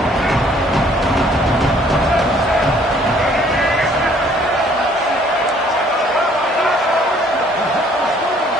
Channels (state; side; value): normal; both; correlation 0.60